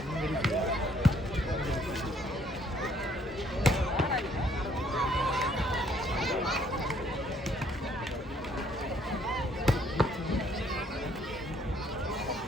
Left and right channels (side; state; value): both; normal; correlation 0.65